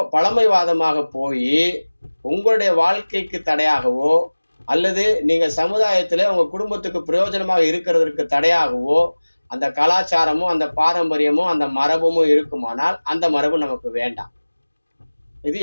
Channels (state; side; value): inverted; both; correlation -1.00